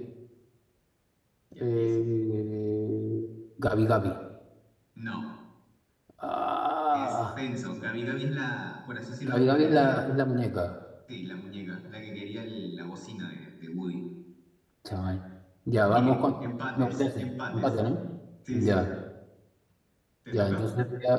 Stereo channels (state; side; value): identical; both; correlation 1.00